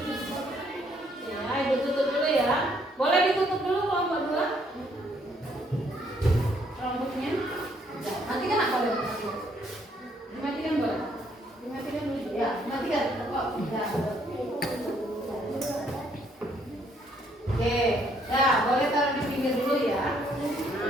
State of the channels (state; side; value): normal; both; correlation 0.68